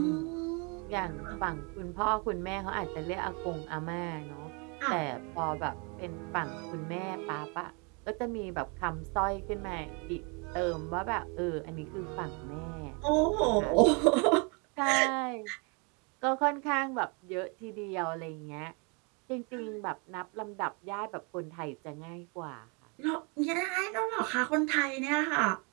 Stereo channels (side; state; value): left; quieter; 33.0 dB